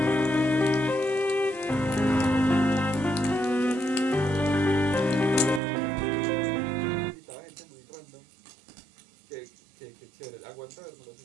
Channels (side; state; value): left; drops out; at 5.6 s